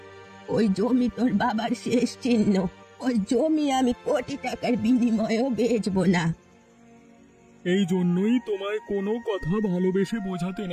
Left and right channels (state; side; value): identical; both; correlation 1.00